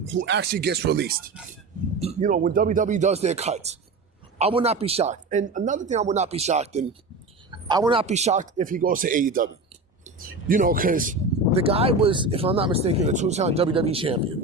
actually gets released. When WWE does their cuts. I would not be shocked. And another thing I would not be shocked in, I would not be shocked if he goes to AEW. Because the guy was, if I'm not mistaken, a two-time WWE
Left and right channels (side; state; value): left; quieter; 3.4 dB